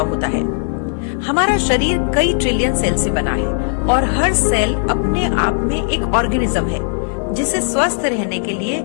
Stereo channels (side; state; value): right; silent; 57 dB below the other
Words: होता है। हमारा शरीर कई ट्रिलियन सेल से बना है और हर सेल अपने आप में एक ऑर्गेनिज्म है जिसे स्वस्थ रहने के लिए